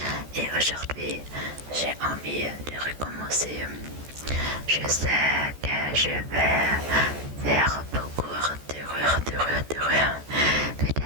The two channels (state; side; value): late; left; 14 ms